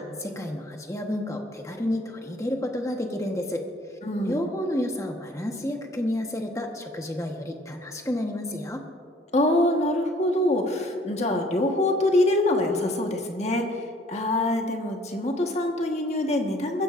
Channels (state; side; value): normal; both; correlation 0.58